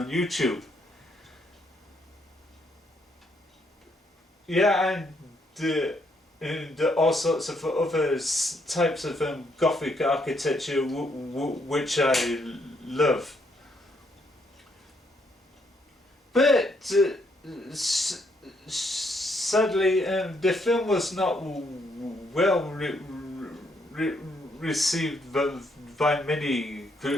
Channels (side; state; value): both; normal; correlation 0.73